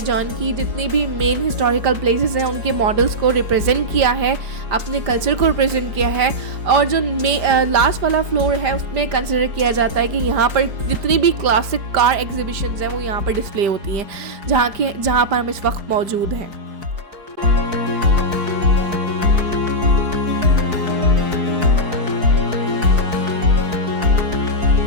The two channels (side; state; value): left; late; 5.0 ms